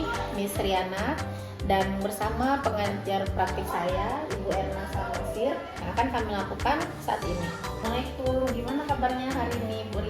Miss Riana, dan bersama pengajar praktik saya, Ibu Erna Salmasir, yang akan kami lakukan saat ini. Assalamualaikum, gimana kabarnya hari ini, Bu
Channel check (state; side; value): identical; both; correlation 1.00